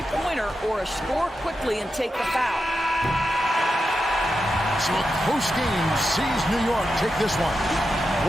or a score quickly and take the foul. So a close game sees New York take this one.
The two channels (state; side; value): normal; both; correlation 0.88